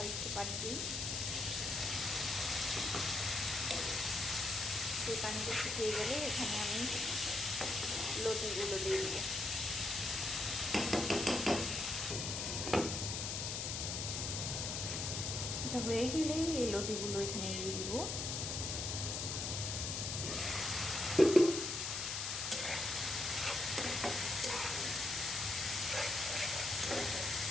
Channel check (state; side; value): noise; left; hiss, 2 dB below the sound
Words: একটু পানি দিই। সেই পানিটা শুকিয়ে গেলে এখানে আমি লতিগুলো দিয়ে দিব। এটা হয়ে গেলেই এই লতিগুলো এখানে দিয়ে দিব।